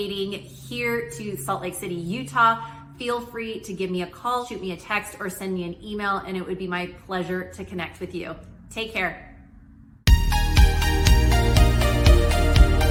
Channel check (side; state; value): both; identical; correlation 1.00